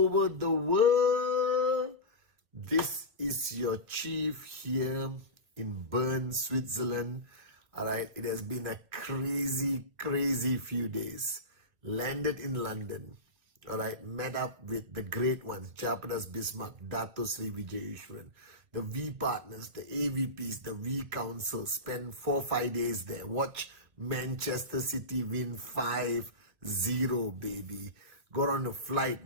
the world. This is your chief here in Bern, Switzerland. All right, it has been a crazy few days. Landed in London. All right, met up with the great ones, Japadas Bismarck, Dato Sri Vijay Ishwaran, the V partners, the AVPs, the V council. Spent 4-5 days there. Watch Manchester City win 5-0, baby. Got on a flight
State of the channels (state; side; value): late; left; 2.4 ms